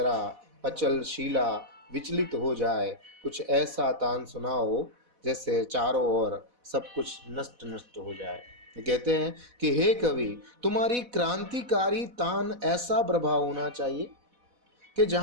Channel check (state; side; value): late; left; 4.1 ms